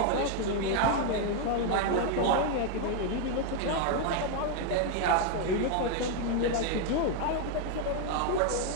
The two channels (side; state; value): both; different; correlation 0.01